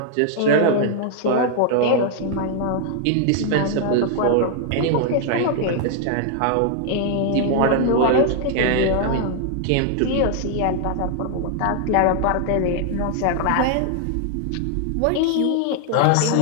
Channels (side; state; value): both; different; correlation 0.00